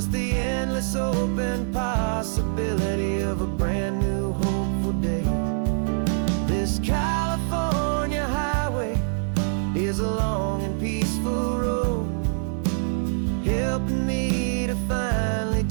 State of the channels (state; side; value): silent; left; digital silence